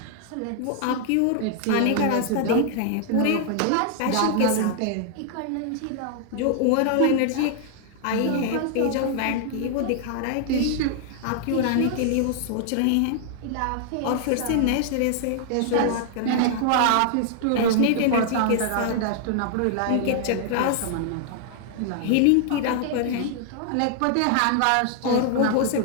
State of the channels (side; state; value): both; different; correlation 0.00